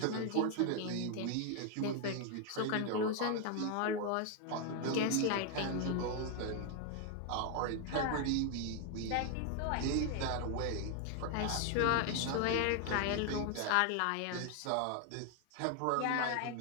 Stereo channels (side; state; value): both; different; correlation 0.00